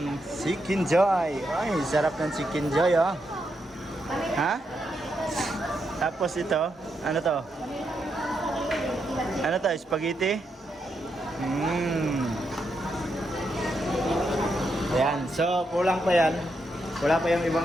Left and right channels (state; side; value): normal; both; correlation 0.82